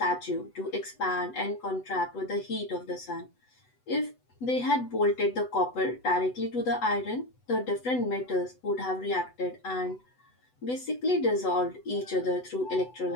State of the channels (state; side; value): late; right; 8.0 ms